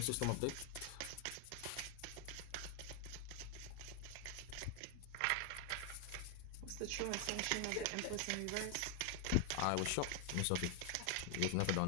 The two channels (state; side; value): different; both; correlation 0.00